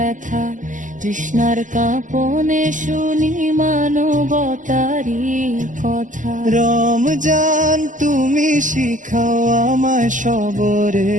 তৃষ্ণার কাঁপনে শুনি মানবতারি কথা। রমজান তুমি শিখাও আমায়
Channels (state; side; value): late; left; 0.37 ms